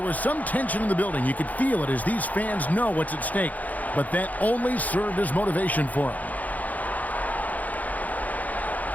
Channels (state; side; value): late; right; 0.078 ms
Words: was some tension in the building. You could feel it as these fans know what's at stake. But that only served as motivation for him.